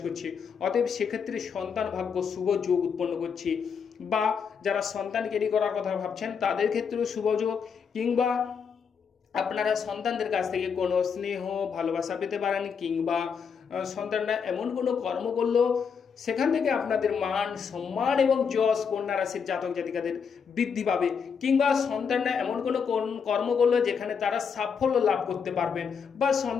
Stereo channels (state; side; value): quieter; right; 6.4 dB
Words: করছে। অতএব সেক্ষেত্রে সন্তান ভাগ্য শুভ যোগ উৎপন্ন করছে। বা যারা সন্তান ক্যারি করার কথা ভাবছেন, তাদের ক্ষেত্রেও শুভ যোগ, কিংবা আপনারা সন্তানদের কাছ থেকে কোনো স্নেহ ভালোবাসা পেতে পারেন, কিংবা সন্তানরা এমন কোনো কর্ম করলো সেখান থেকে আপনাদের মান সম্মান এবং যশ কন্যা রাশির জাতক জাতিকাদের বৃদ্ধি পাবে, কিংবা সন্তানরা এমন কোনো কর্ম করলো যেখানে তারা সাফল্য লাভ করতে পারবেন। বা